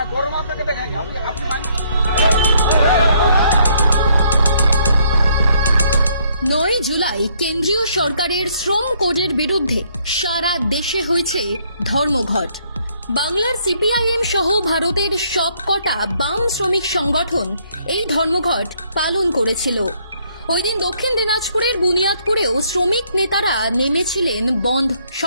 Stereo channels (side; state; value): both; inverted; correlation -0.68